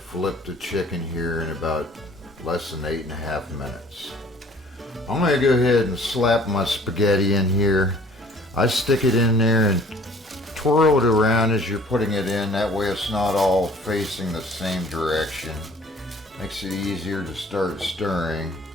the chicken here in about less than 8.5 minutes. I'm going to go ahead and slap my spaghetti in here. I stick it in there and twirl it around as you're putting it in. That way it's not all facing the same direction. Makes it easier to start stirring.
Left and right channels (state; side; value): normal; both; correlation 0.53